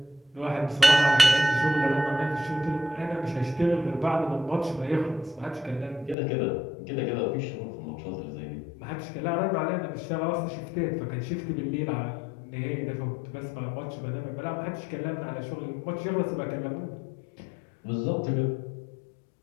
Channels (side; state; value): right; drops out; at 6.2 s